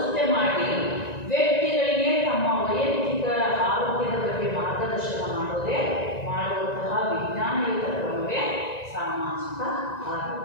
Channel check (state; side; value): late; right; 1.9 ms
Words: ಮಾಡಿ, ವ್ಯಕ್ತಿಗಳಿಗೆ ತಮ್ಮ ವೈಯಕ್ತಿಕ ಆರೋಗ್ಯದ ಬಗ್ಗೆ ಮಾರ್ಗದರ್ಶನ ಮಾಡುವಂತಹ ವಿಜ್ಞಾನಯುತ ಕ್ರಮವೇ ಸಾಮಾಜಿಕ